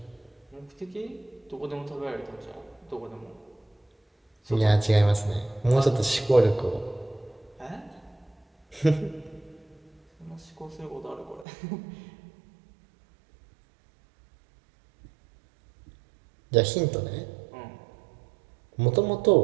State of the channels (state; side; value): drops out; left; at 11.5 s